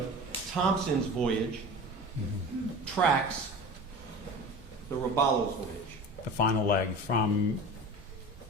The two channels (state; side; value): normal; both; correlation 0.36